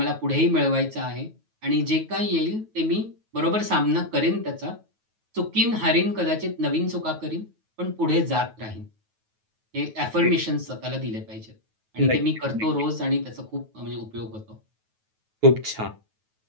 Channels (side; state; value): left; late; 9.3 ms